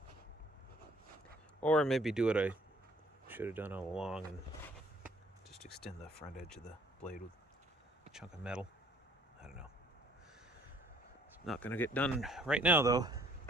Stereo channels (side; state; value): both; normal; correlation 0.59